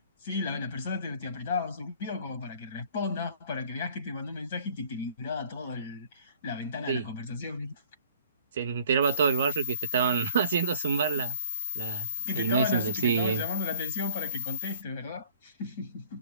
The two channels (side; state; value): both; inverted; correlation -0.54